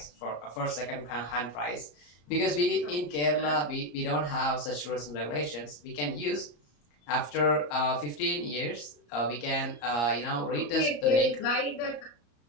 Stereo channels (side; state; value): right; late; 34 ms